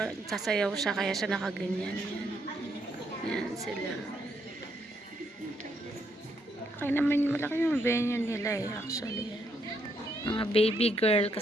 sasayaw siya kaya siya nakaganyan. Yan. Yan sila. Okay naman, malaki yung venue nila actually. Mga baby girl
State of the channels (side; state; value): both; normal; correlation 0.75